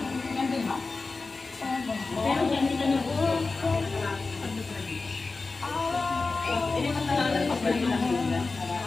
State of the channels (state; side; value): quieter; right; 3.9 dB